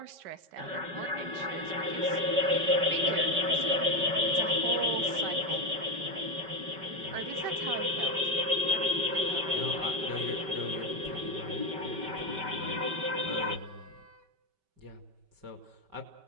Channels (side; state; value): left; late; 5.2 ms